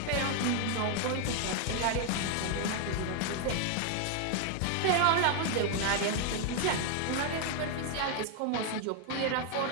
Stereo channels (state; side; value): different; both; correlation 0.00